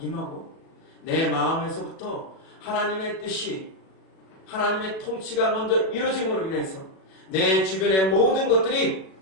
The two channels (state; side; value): late; right; 37 ms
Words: 내 마음에서부터 하나님의 뜻이 하나님의 통치가 먼저 이루어짐으로 인해서 내 주변의 모든 것들이